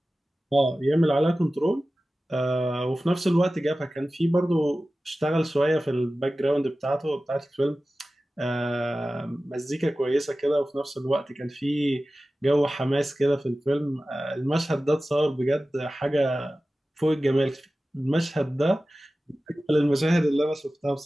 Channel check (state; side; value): normal; both; correlation 0.96